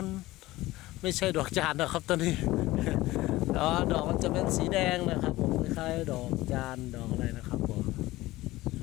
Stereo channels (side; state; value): right; quieter; 18.1 dB